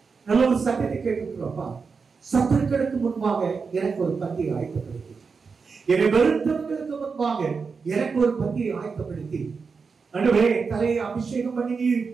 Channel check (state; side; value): quieter; left; 5.1 dB